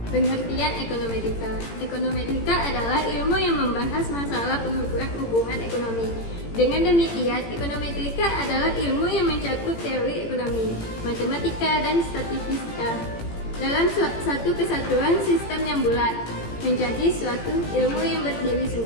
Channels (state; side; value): late; right; 18 ms